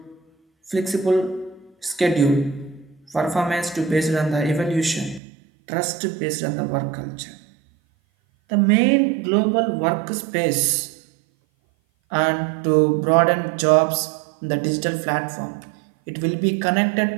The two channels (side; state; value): left; drops out; at 5.2 s